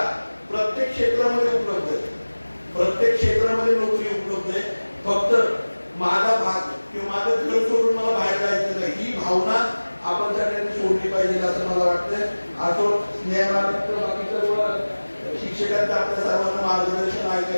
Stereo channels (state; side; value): inverted; both; correlation -1.00